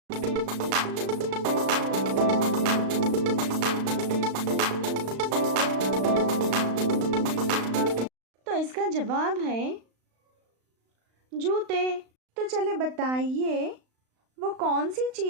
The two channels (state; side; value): late; left; 35 ms